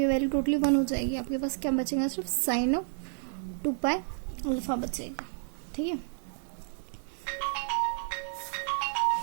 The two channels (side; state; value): left; silent; digital silence